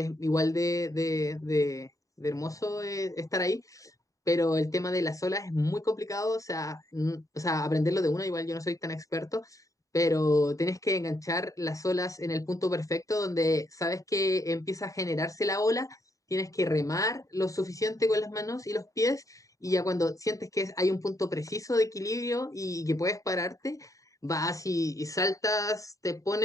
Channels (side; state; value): both; normal; correlation 0.77